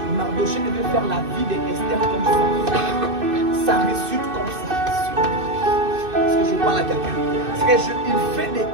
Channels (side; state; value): left; late; 2.6 ms